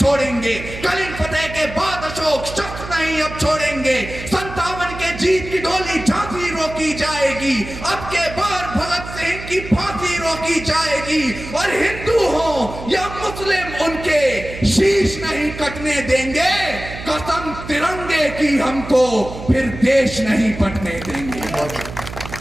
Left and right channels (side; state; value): right; noise; hum, 11 dB below the sound